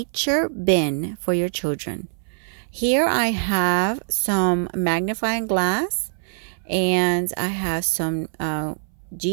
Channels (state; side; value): silent; left; 63 dB below the other